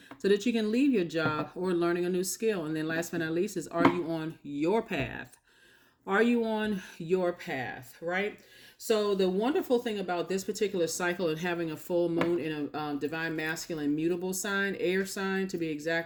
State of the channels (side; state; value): both; identical; correlation 1.00